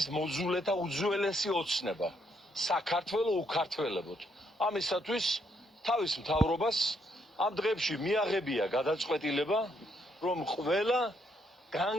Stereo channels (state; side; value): normal; both; correlation 0.74